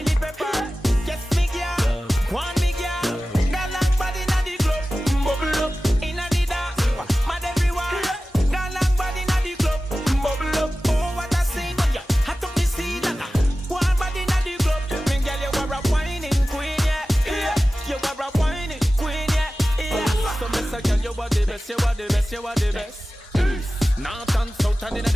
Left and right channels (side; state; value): both; normal; correlation 0.96